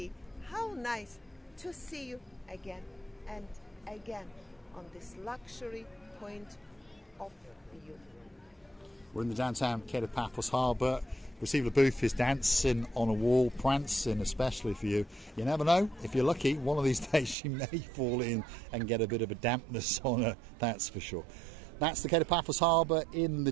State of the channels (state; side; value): drops out; left; at 17.4 s